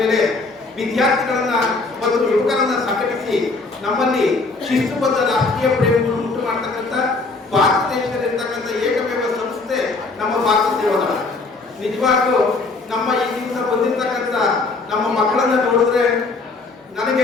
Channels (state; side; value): quieter; right; 3.7 dB